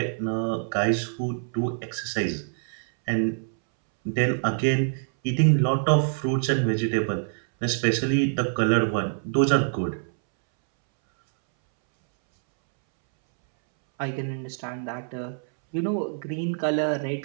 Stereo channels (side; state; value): left; silent; 61 dB below the other